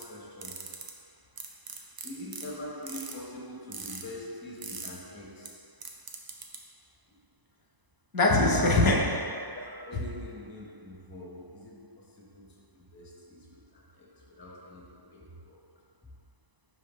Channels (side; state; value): left; late; 1.0 ms